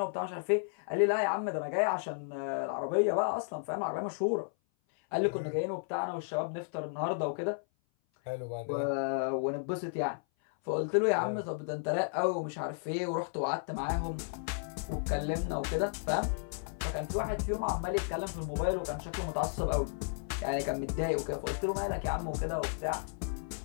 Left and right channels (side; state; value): right; silent; 56 dB below the other